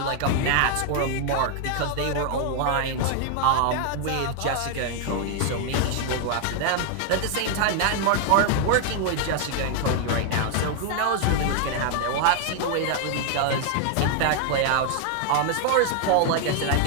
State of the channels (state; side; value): different; both; correlation 0.00